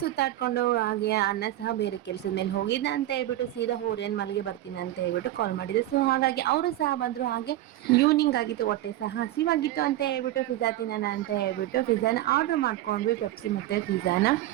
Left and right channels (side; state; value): left; quieter; 14.6 dB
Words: ಹಾಗೆ ಅಣ್ಣ ಸಹ ಬೇರೆ ಕೆಲ್ಸದ ಮೇಲೆ ಹೋಗಿದ್ದ ಅಂತ ಹೇಳ್ಬಿಟ್ಟು ಸೀದಾ ಓರೇನ್ ಮಲ್ಗೆ ಬರ್ತೀನಿ ಅಂತ ಹೇಳ್ಬಿಟ್ಟು ಕಾಲ್ ಮಾಡಿದ್ರು. ಸೊ ಹಾಗಾಗಿ ಅವರು ಸಹ ಬಂದ್ರು. ಹಾಗೆ ಈವ್ನಿಂಗ್ ಆಗಿತ್ತು, ಹೊಟ್ಟೆ ಸಹ ಹಸಿವಾಗಿತ್ತು ಅಂತ ಹೇಳ್ಬಿಟ್ಟು ಪಿಜ್ಜಾ ತಿನ್ನೋಣ ಅಂತ ಹೇಳ್ಬಿಟ್ಟು ಪಿಜ್ಜಾನ ಆರ್ಡರ್ ಮಾಡ್ಕೊಂಡ್ವಿ. ಪೆಪ್ಸಿ ಮತ್ತೆ ಪಿಜ್ಜಾನ,